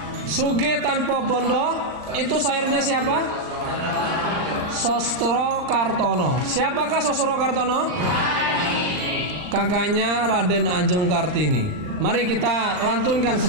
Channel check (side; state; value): left; late; 39 ms